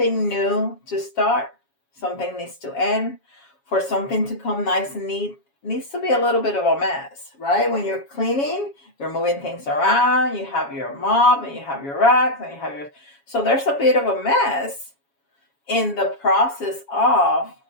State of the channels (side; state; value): right; late; 7.2 ms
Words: new to start, something needs to end. For something to come nice and neat, it needs to be a little bit of a mess, right? When you're cleaning, you're moving things around, you have your mop and you have your racks and you have your. So there's a bit of a mess in the process of